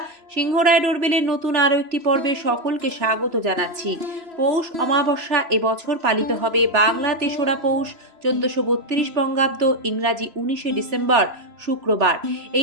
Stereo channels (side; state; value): left; late; 3.0 ms